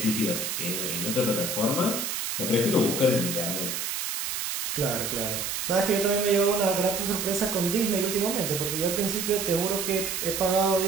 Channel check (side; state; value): right; noise; hiss, 2 dB below the sound